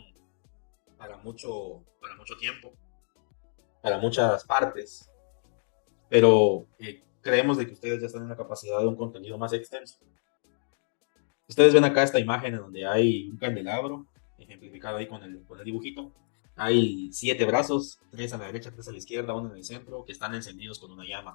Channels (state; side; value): silent; right; digital silence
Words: para mucho tiempo, para muchas partes, pero creemos de que ustedes ya están en la capacidad de un contenido más extenso. Ustedes ven acá esta imagen en donde hay un candelabro, ejemplificado ahí con el dibujito. Hay 7 brazos, 3 a la derecha, 3 a la izquierda, uno en el centro, que están encendidos con una